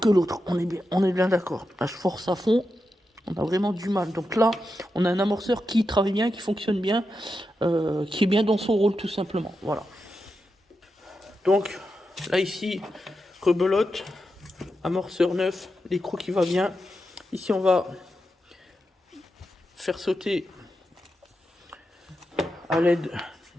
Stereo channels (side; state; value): both; normal; correlation 0.88